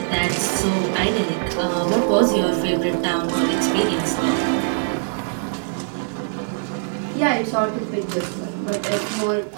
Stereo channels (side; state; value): left; silent; digital silence